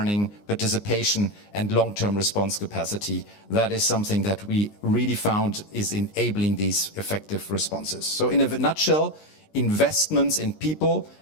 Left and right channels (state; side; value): late; right; 19 ms